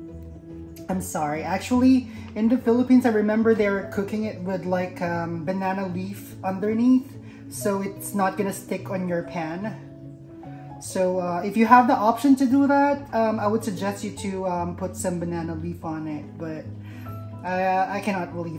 I'm sorry, actually in the Philippines I remember they were cooking it with like banana leaf underneath, so it's not gonna stick on your pan. So if you have the option to do that, I would suggest you to put some banana leaf on it, but I cannot really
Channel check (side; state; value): both; identical; correlation 1.00